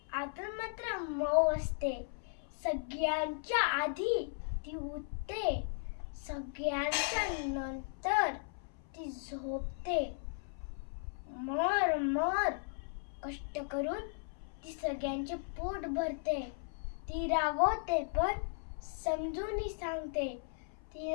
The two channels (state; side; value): silent; right; 53 dB below the other